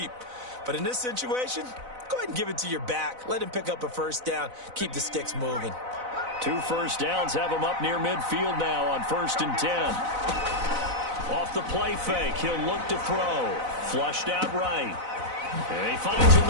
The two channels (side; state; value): left; late; 4.0 ms